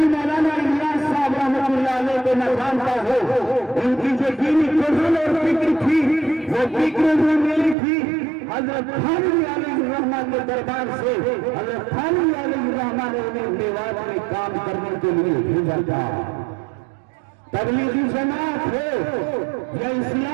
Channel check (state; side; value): drops out; left; at 7.8 s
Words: الیاس صاحب رحمۃ اللہ علیہ کو نہ جانتا ہو۔ ان کی جو دینی قرآن اور فکر تھی وہ فکر بھی ملی تھی حضرت تھانوی علیہ الرحمہ کے دربار سے۔ حضرت تھانوی علیہ الرحمہ نے انہیں میوات میں کام کرنے کے لیے بھیجا تھا۔ تبلیغی جماعت ہو یا